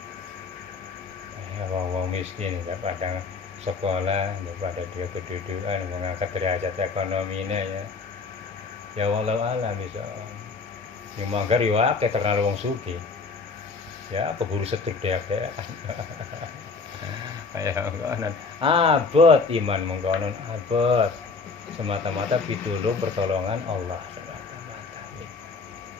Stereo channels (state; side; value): quieter; right; 4.5 dB